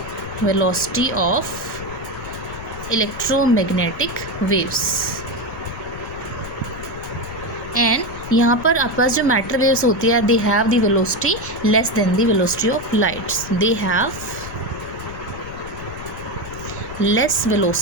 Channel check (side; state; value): left; noise; rumble, 13 dB below the sound